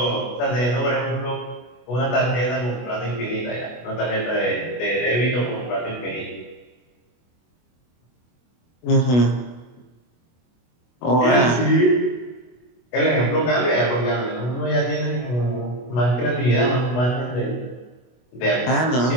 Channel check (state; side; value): late; right; 24 ms